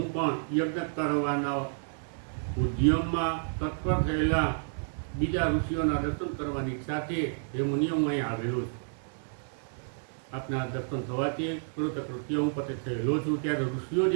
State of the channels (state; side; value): silent; left; 58 dB below the other